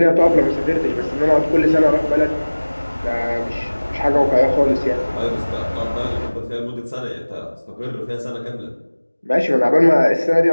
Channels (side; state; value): both; inverted; correlation -1.00